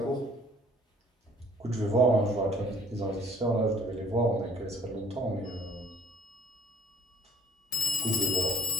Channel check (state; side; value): normal; both; correlation 0.53